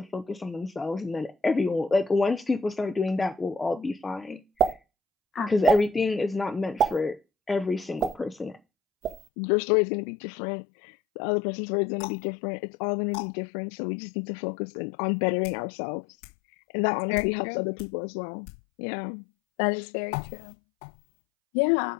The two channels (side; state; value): right; drops out; at 9.2 s